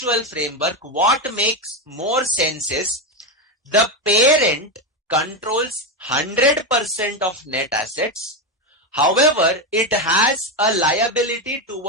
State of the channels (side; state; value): both; normal; correlation 0.11